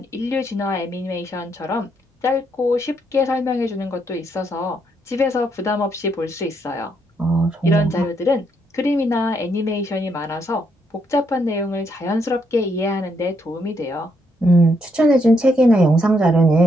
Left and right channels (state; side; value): normal; both; correlation 0.75